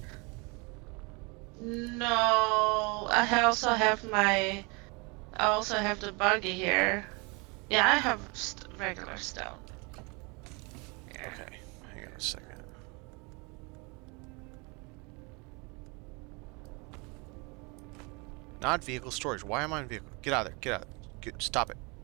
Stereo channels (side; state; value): left; quieter; 29.6 dB